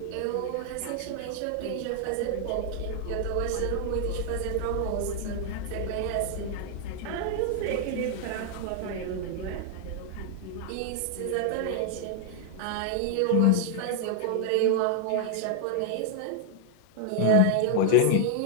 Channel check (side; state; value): both; different; correlation 0.00